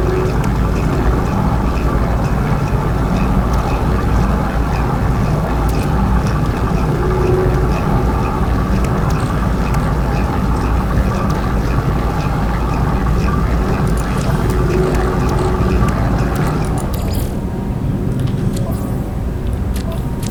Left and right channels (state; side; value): identical; both; correlation 1.00